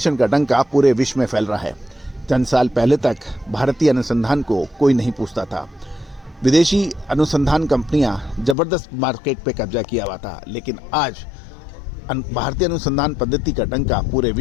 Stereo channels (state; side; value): drops out; right; at 8.6 s